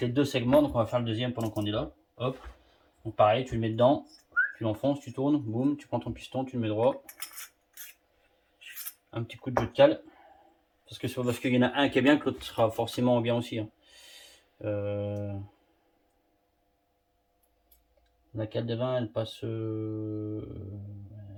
deux segments. Donc on va faire le deuxième pendant qu'on est là. Hop. Donc pareil, tu le mets dedans, tu l'enfonces, tu tournes, boum, tu prends ton piston, tu le mets droit. Un petit coup de jeu de cale. Parce que c'est pas parce qu'il y en a un qui est bien que l'autre sera forcément bien aussi. Hein. La cale de vin, elle passe,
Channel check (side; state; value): both; identical; correlation 1.00